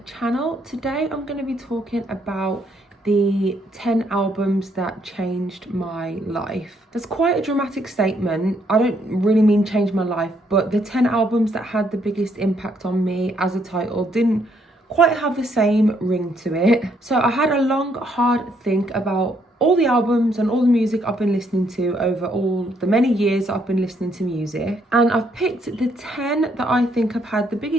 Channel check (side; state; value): both; normal; correlation 0.71